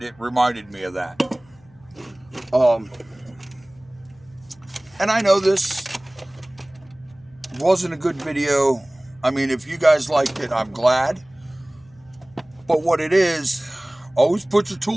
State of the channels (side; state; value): left; noise; hum, 29 dB below the sound